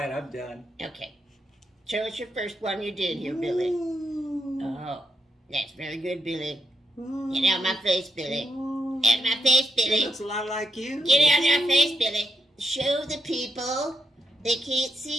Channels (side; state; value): both; normal; correlation 0.81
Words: I'm done. Okay. Show us your first one you did here, Billy. Oh, that's very good, Billy. Get out my face, Billy. Out my face, Billy. It looks a lot like you. Get out of my face, Billy. Show the people. They can't